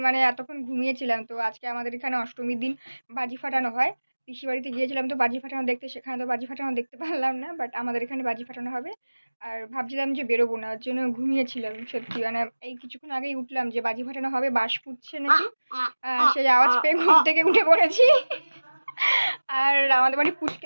মানে এতক্ষণ ঘুমিয়েছিলাম। তো আজকে আমাদের এখানে অষ্টমীর দিন বাজি ফাটানো হয়। পিসি বাড়িতে গিয়েছিলাম তো বাজি ফাটানো দেখতে, সেখানে তো বাজি ফাটানো দেখতে পারলাম না, বাট আমাদের এখানে বাজি ফাটানো হবে। আর ভাবছিলাম যে বেরোবো না, ওর জন্য ঘুমিয়েছিলাম। সত্যি মানে এই কিছুক্ষণ আগেই উঠলাম যে বাজি ফাটানো হবে, বাঁশ ফুটছে নাকি, সেই আওয়াজ পেয়ে ঘুম থেকে উঠে পড়েছি। আর আমাদের বাড়ি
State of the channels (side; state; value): both; inverted; correlation -1.00